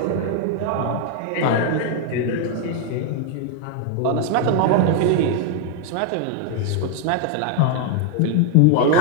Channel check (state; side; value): different; both; correlation 0.00